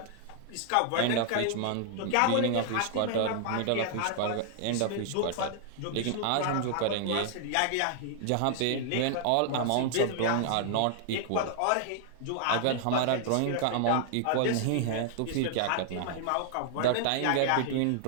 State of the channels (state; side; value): different; both; correlation 0.00